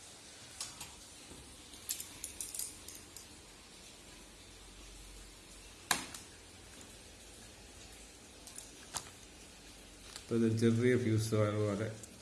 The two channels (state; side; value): identical; both; correlation 1.00